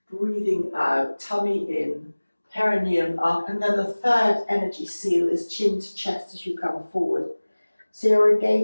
Breathing out, tummy in, perineum up. And then the third energy seal is chin to chest as you come forward. So you're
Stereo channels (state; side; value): inverted; both; correlation -1.00